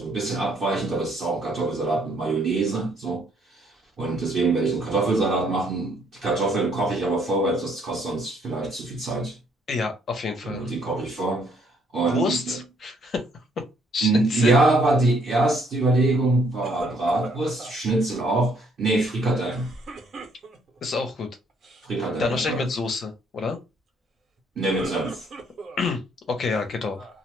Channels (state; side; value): normal; both; correlation 0.67